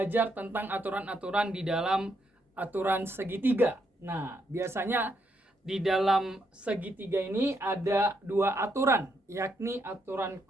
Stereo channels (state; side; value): normal; both; correlation 0.77